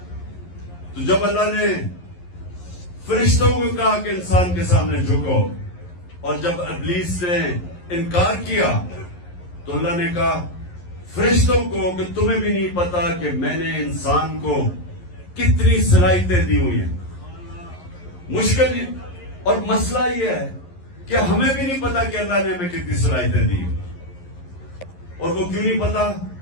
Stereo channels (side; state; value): right; late; 11 ms